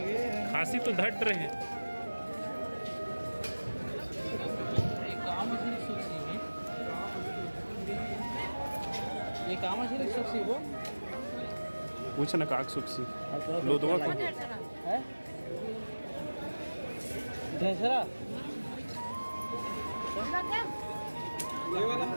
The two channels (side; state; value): both; inverted; correlation -1.00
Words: तो धट रहे हैं। ये काम है सुखसी वो पूछ ना काक सुखसी लो दो को है ढेसरा ये वाला